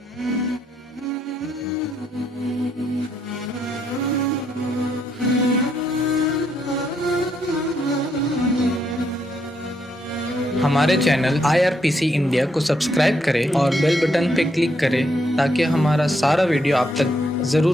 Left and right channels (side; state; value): both; normal; correlation 0.75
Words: हमारे चैनल IRPC इंडिया को सब्सक्राइब करें और बेल बटन पे क्लिक करें ताकि हमारा सारा वीडियो आप तक